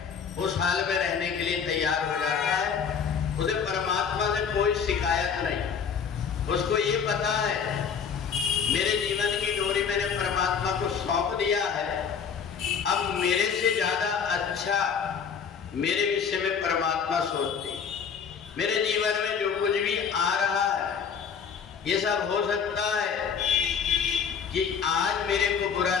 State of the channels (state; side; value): quieter; right; 6.8 dB